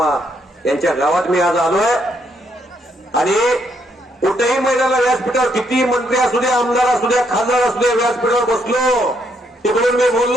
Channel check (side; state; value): both; normal; correlation 0.74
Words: यांच्या गावात मी आज आलोय. आणि कुठेही मैदानाला व्यासपीठावर किती मंत्री असू द्या, आमदार असू द्या, खासदार असू द्या, व्यासपीठावर बसलो तिकडून मी